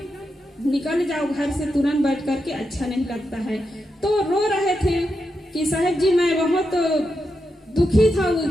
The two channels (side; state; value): both; normal; correlation 0.86